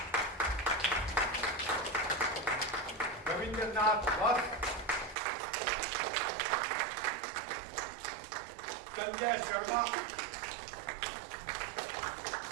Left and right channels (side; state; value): left; drops out; at 5.2 s